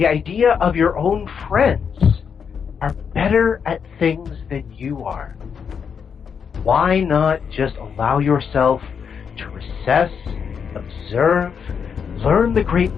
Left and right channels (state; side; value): quieter; right; 6.8 dB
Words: idea of your own friends are better at things than you are. why not just allow yourself to recess, observe, learn the great